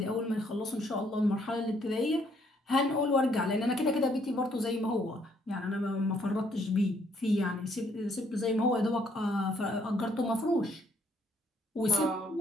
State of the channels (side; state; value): both; normal; correlation 0.68